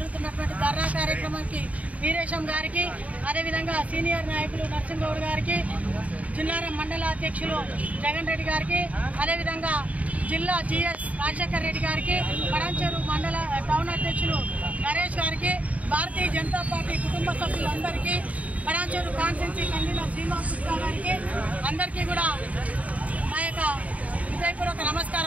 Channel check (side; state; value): left; late; 0.069 ms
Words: ధర్నా కార్యక్రమానికి వీరేశం గారికి, అదేవిధంగా సీనియర్ నాయకులు నరసింహగౌడ్ గారికి, జిల్లారం మండల అధ్యక్షులు జగన్ రెడ్డి గారికి, అదేవిధంగా జిల్లా జిఎస్ రాజశేఖర్ రెడ్డి గారికి, పటాన్చెరు మండల టౌన్ అధ్యక్షులు నరేష్ గారికి, భారతీయ జనతా పార్టీ కుటుంబ సభ్యులందరికీ, పటాన్చెరు కాన్స్టిట్యున్సీ కన్వీనర్ శ్రీనివాస్ గుప్తా గారికి అందరికీ కూడా మా యొక్క హృదయపూర్వక